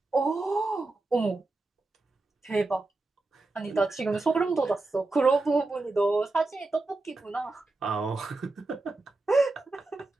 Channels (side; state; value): left; quieter; 3.3 dB